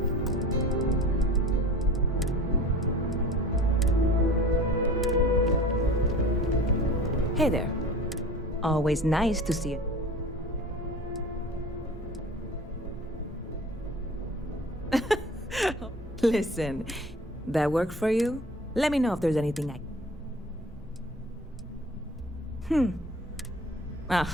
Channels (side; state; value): both; normal; correlation 0.40